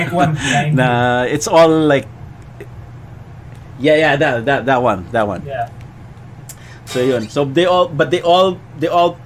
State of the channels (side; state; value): both; identical; correlation 1.00